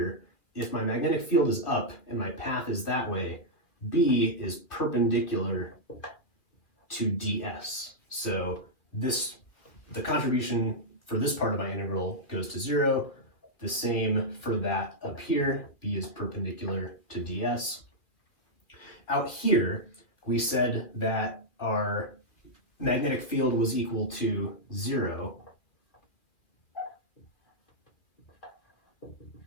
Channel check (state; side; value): late; right; 2.3 ms